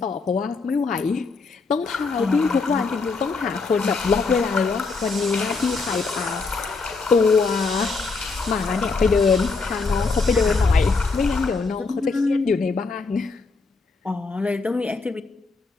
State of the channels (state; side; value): quieter; right; 4.2 dB